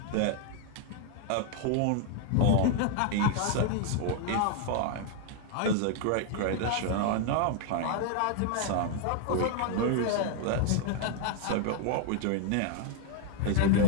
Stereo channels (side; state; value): both; different; correlation 0.00